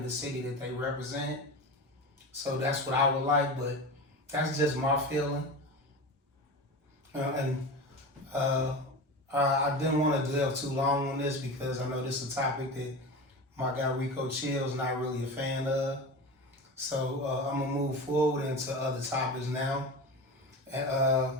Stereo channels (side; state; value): both; normal; correlation 0.28